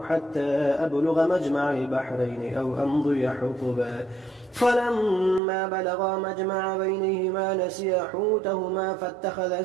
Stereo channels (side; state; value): left; drops out; at 5.4 s